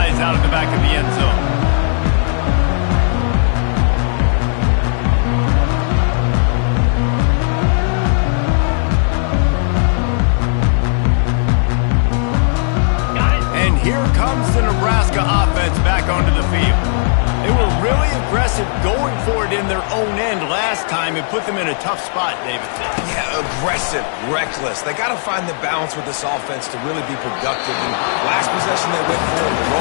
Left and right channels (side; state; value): right; silent; digital silence